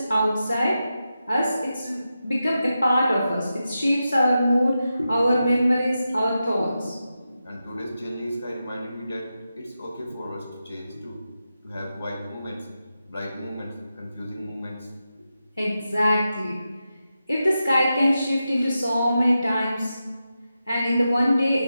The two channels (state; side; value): inverted; both; correlation -0.90